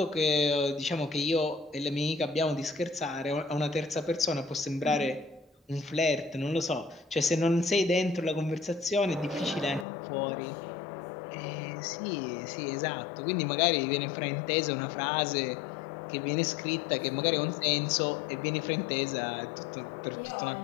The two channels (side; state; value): right; drops out; at 9.9 s